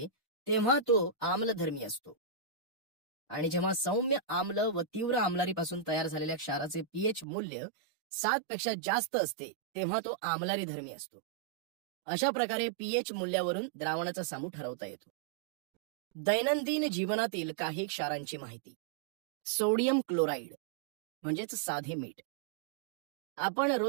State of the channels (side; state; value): left; drops out; at 7.2 s